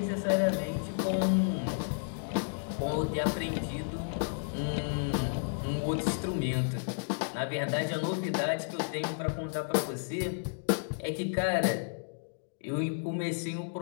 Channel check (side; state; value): right; silent; digital silence